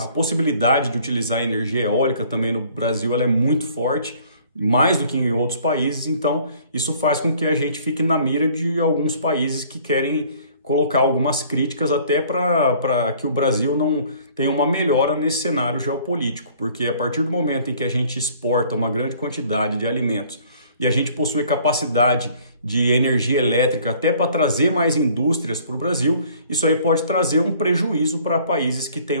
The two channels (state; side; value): inverted; both; correlation -0.56